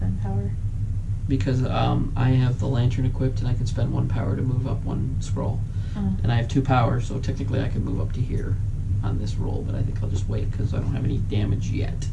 power? Because I have the lantern equipped, and I can spend 1 power to move up 1 scroll. And I have 2 power, so technically I can move up to here on this roll, but I think I'll just wait because I don't have any damage yet.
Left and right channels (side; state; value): both; identical; correlation 1.00